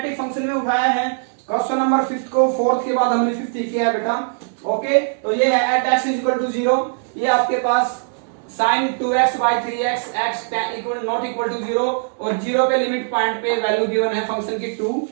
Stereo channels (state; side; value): silent; left; digital silence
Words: फंक्शन में उठाया है क्वेश्चन नंबर 5 को, 4th के बाद हमने 5th किया है बेटा। ओके, तो ये है at x is equal to 0, ये आपके पास sin 2x by 3x x equal not equal to 0 और 0 पे लिमिट पॉइंट पे वैल्यू गिवन है फंक्शन की 2,